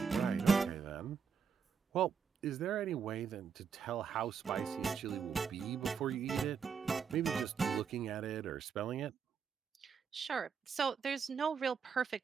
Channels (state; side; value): quieter; left; 6.4 dB